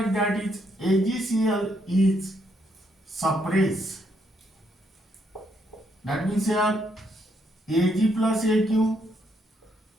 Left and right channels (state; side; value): normal; both; correlation 0.75